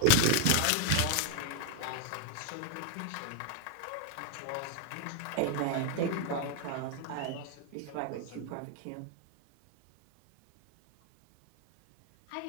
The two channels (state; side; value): different; both; correlation 0.00